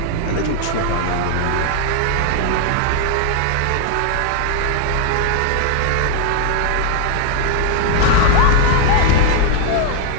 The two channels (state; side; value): different; both; correlation 0.00